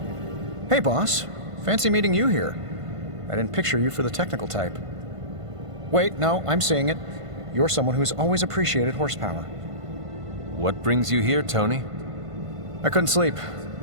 Hey, boss. Fancy meeting you here. I didn't picture you for the technical type. Wait, no, I'm seeing it. You're someone who's always appreciated horsepower. What brings you here, Tony? I couldn't sleep.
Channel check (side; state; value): left; late; 1.5 ms